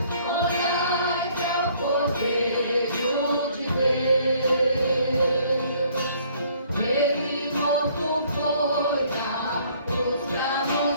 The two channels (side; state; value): both; inverted; correlation -0.61